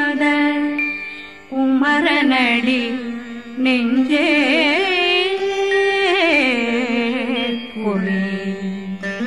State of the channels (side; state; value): both; identical; correlation 1.00